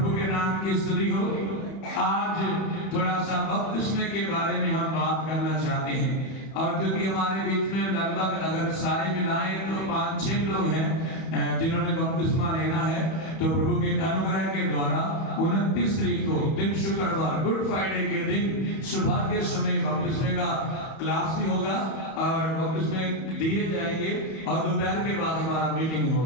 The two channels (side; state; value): right; late; 31 ms